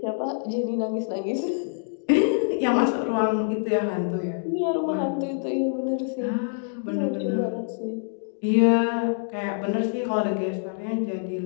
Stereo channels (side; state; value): right; silent; digital silence